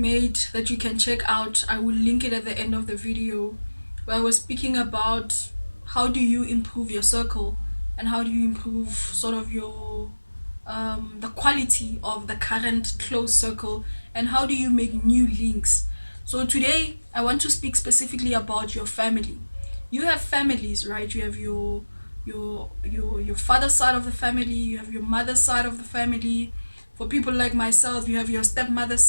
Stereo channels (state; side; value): inverted; both; correlation -1.00